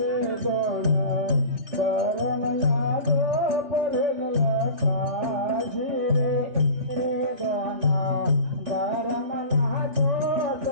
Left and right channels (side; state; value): left; late; 2.6 ms